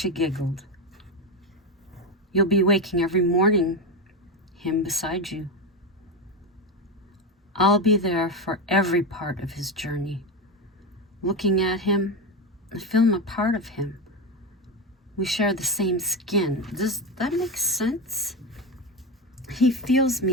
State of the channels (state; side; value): normal; both; correlation 0.15